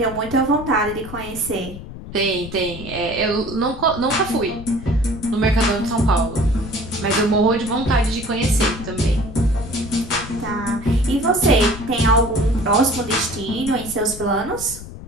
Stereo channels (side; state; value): left; noise; rumble, 12 dB below the sound